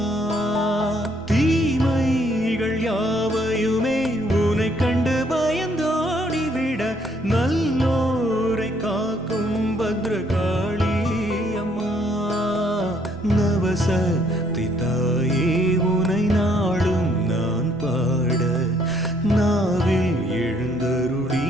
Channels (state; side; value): normal; both; correlation 0.67